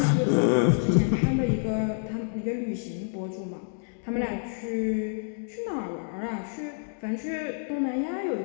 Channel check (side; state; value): right; silent; digital silence